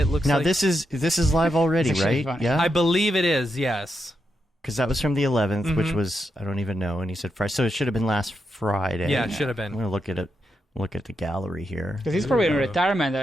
looks now like... this is live already, right? Funny. Yeah, I believe it is, yes. because that was from the 11th, which was, I don't even know. And he said Friday, so it should have been last Friday. Yeah, it should have been. I'm gonna look at it. Look at the gallery here. Because he's probably in retirement.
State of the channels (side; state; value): both; normal; correlation 0.84